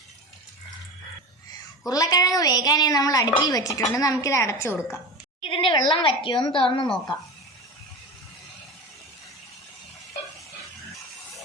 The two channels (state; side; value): normal; both; correlation 0.28